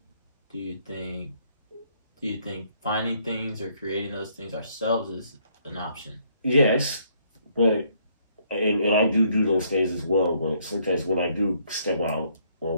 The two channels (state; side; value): inverted; both; correlation -0.68